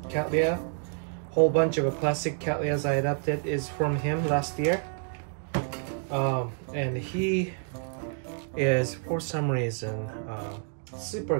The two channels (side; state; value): left; silent; 59 dB below the other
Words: Whole bunch of classic Cattleyas I adopted is from him last year. And he is, for some reason, super